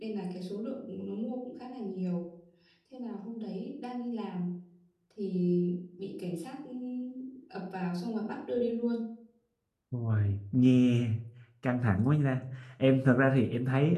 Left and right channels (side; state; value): both; identical; correlation 1.00